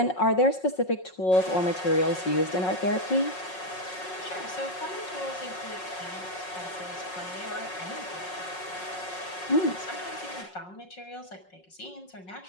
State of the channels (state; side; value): late; right; 5.5 ms